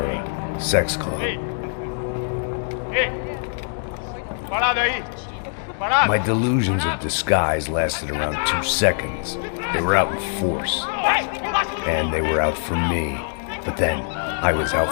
a sex club. My delusions of disguise lasted around 2 seconds. They were out in force. And they were out for me. But then, I was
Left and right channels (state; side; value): silent; right; digital silence